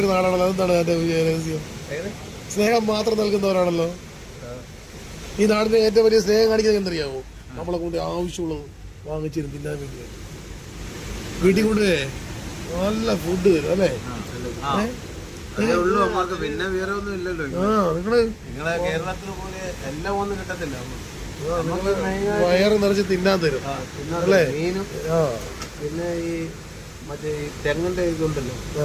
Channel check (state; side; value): identical; both; correlation 1.00